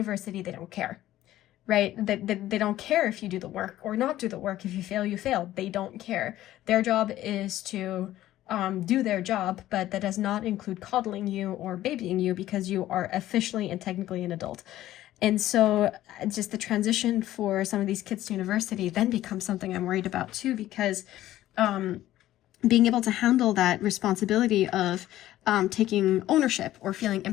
they don't care, right? They don't care if you do the work or not do the work. If you fail, you fail. They don't care. Their job is to do their job, but that does not include coddling you or babying you, because you are officially and technically an adult. And so just the transition for some of these kids to university then becomes something I'm worried about too, because being able to handle that responsibility of taking ownership or feeling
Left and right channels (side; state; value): right; quieter; 14.2 dB